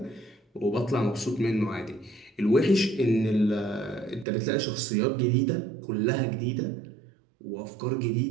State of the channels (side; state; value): left; drops out; at 4.2 s